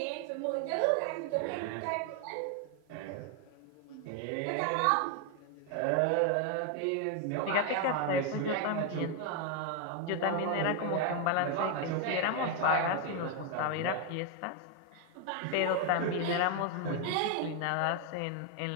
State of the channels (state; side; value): different; both; correlation 0.01